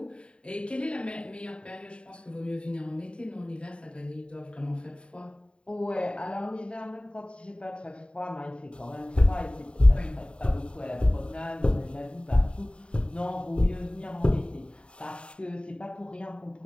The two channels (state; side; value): late; right; 0.055 ms